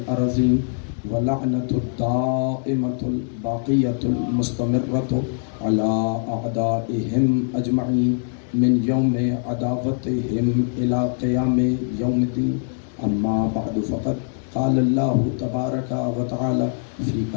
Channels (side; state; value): right; silent; digital silence